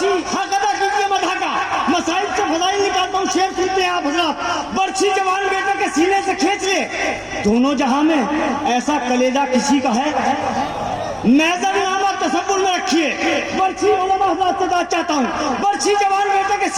हक अदा कीजिए मधा का, मसाइब से फजाइल निकालता हूँ, शेर सुनते हैं आप हजरात। बर्छी जवान बेटे के सीने से खींच ले, दोनों जहां में ऐसा कलेजा किसी का है, मैजर नामा तसव्वुर में रखिए। बर्छी उलमा हजरात से बात चाहता हूँ, बर्छी जवान बेटे के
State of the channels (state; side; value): identical; both; correlation 1.00